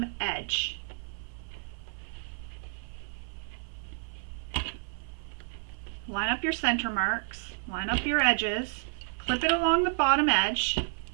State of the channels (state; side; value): silent; left; 57 dB below the other